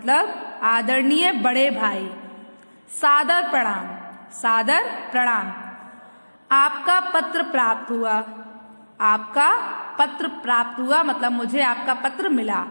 आदरणीय बड़े भाई। सादर प्रणाम, सादर प्रणाम। आपका पत्र प्राप्त हुआ। आपका पत्र प्राप्त हुआ मतलब मुझे आपका पत्र मिला।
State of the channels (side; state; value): both; inverted; correlation -1.00